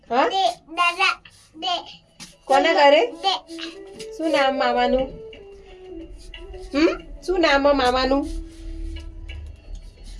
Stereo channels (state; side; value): identical; both; correlation 1.00